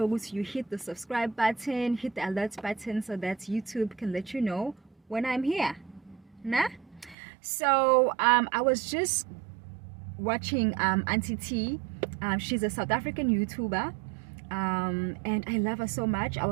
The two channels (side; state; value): left; drops out; at 7.2 s